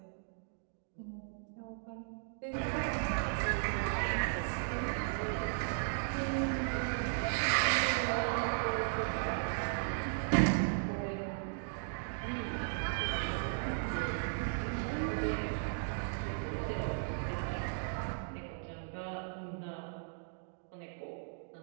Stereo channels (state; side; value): silent; left; digital silence